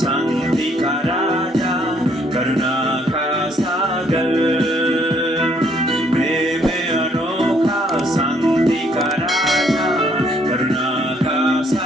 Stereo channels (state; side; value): normal; both; correlation 0.66